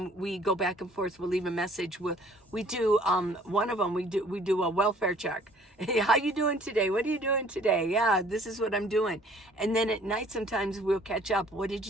we go back and forth. We'll leave a message. We do one of them. We do a welfare check. Hey, how you doing today? What are you doing today? Yeah, this is what I'm doing. And then at night, sometimes we'll catch up. What did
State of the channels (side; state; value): both; normal; correlation 0.56